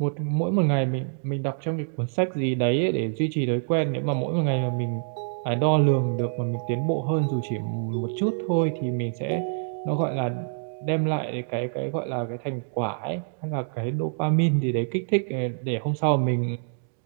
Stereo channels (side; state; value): left; silent; digital silence